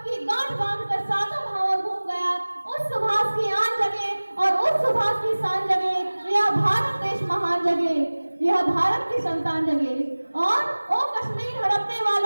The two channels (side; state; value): both; inverted; correlation -1.00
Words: की गांठ बांधकर सातों भावर घूम गया, उस सुभाष की आन जगे और उस सुभाष की शान जगे, यह भारत देश महान जगे, यह भारत की संतान जगे। और ओ कश्मीर हड़पने